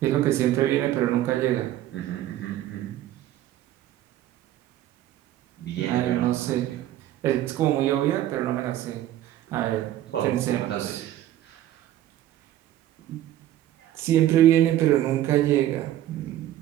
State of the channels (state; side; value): quieter; left; 13.1 dB